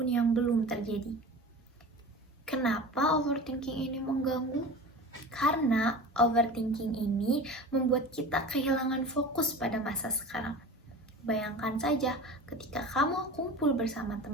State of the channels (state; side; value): normal; both; correlation 0.34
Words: yang belum terjadi. Kenapa overthinking ini mengganggu? Karena overthinking ini membuat kita kehilangan fokus pada masa sekarang. Bayangkan saja ketika kamu kumpul bersama